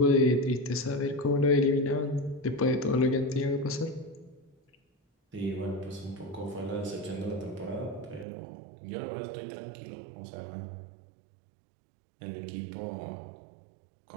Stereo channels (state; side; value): drops out; left; at 8.2 s